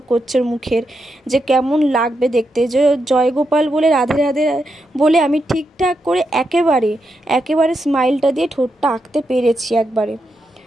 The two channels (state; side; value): normal; both; correlation 0.84